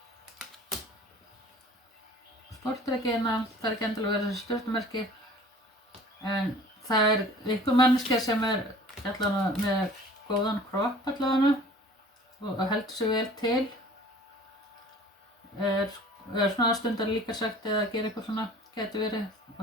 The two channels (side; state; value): both; normal; correlation 0.47